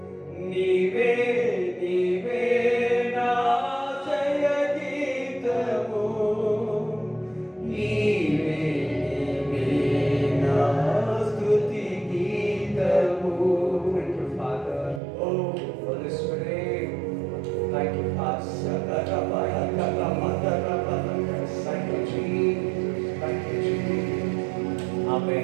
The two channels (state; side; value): drops out; left; at 15.0 s